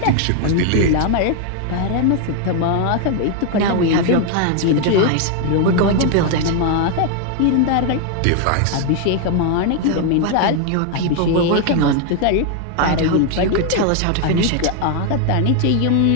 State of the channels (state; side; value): different; both; correlation 0.01